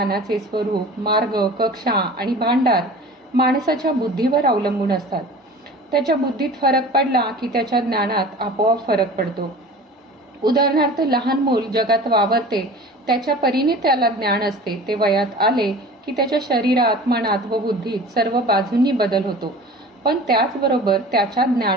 स्वरूप, मार्ग, कक्षा आणि भांडार माणसाच्या बुद्धीवर अवलंबून असतात. त्याच्या बुद्धीत फरक पडला की त्याच्या ज्ञानात आपोआप फरक पडतो. उदाहरणार्थ, लहान मूल जगात वावरते, त्याच्या परीने त्याला ज्ञान असते. ते वयात आले की त्याच्या शरीरात, मनात व बुद्धीत सर्व बाजूंनी बदल होतो. पण त्याचबरोबर त्याच्या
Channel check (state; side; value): normal; both; correlation 0.40